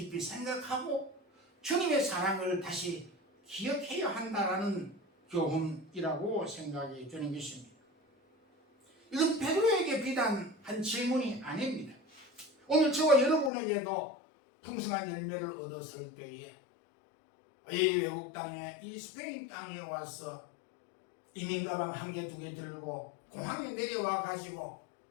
생각하고 주님의 사랑을 다시 기억해야 한다라는 교훈이라고 생각이 드는 것입니다. 이건 베드로에게 비단 한 질문이 아닙니다. 오늘 저와 여러분에게도 풍성한 열매를 얻었을 때에 이 외국 땅에, 이 스페인 땅에 와서 이민 가방 한 개, 두 개 들고 공항에 내려와 가지고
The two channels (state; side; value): drops out; right; at 13.5 s